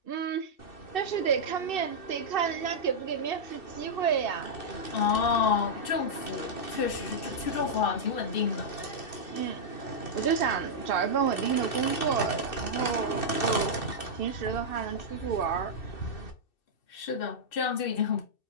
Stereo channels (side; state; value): right; late; 2.7 ms